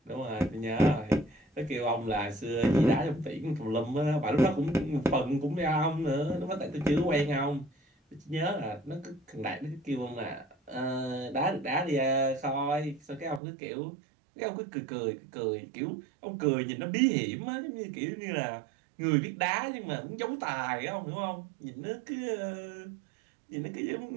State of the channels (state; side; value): drops out; left; at 13.4 s